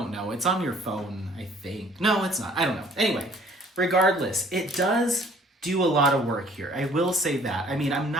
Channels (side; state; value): both; normal; correlation 0.56